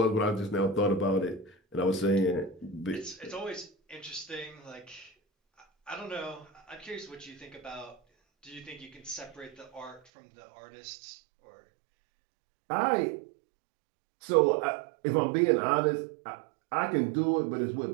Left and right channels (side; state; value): left; drops out; at 10.0 s